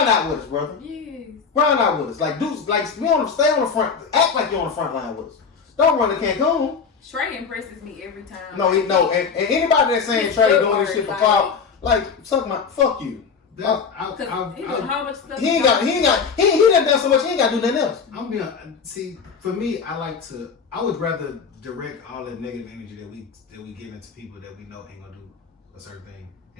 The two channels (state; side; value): quieter; right; 5.7 dB